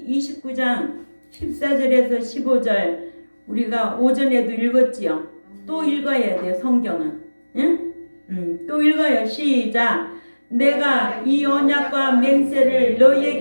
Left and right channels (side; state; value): both; inverted; correlation -1.00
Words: 29장 14절에서 15절 우리가 오전에도 읽었지요. 또 읽어야 돼요. 성경은. 응? 또 읽어요. 시작. 내가 이 언약과 맹세를